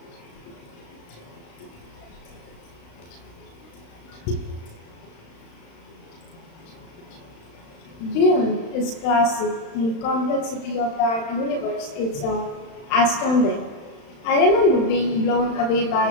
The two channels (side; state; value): right; late; 35 ms